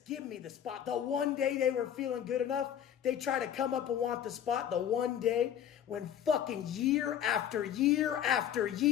give me the spot. The one day they were feeling good enough, they try to come up and want the spot. The one day when fucking year after year after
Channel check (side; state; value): right; quieter; 9.7 dB